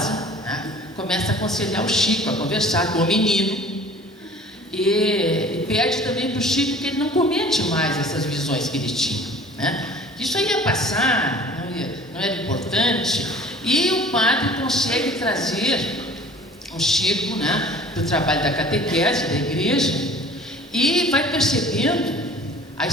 né, começa a aconselhar o Chico, a conversar com o menino, e pede também para o Chico que ele não comente mais essas visões que ele tinha, né? Isso aí ia passar, não era importante. E o padre consegue trazer o Chico, né, para o trabalho da catequese da igreja, e vai percebendo a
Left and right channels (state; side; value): normal; both; correlation 0.47